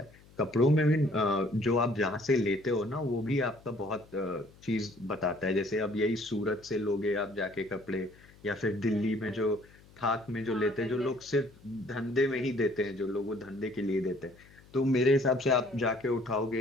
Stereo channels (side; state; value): left; noise; hum, 25 dB below the sound